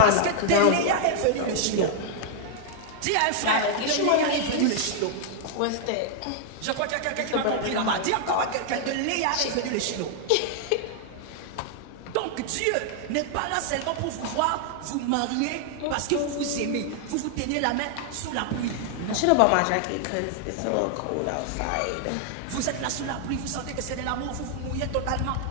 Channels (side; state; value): both; different; correlation 0.00